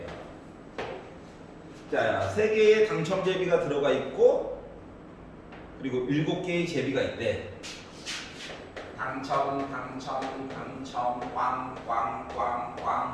자, 3개의 당첨 제비가 들어가 있고 그리고 7개의 제비가 있대. 당첨, 꽝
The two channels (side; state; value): both; identical; correlation 1.00